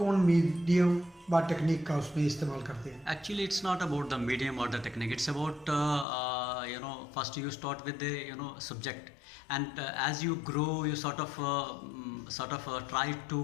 मीडियम व टेक्निक का उसमें इस्तेमाल करते हैं? Actually, it's not about the medium or the technique. It's about first you start with the subject, and as you grow, you sort of try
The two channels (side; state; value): right; drops out; at 6.1 s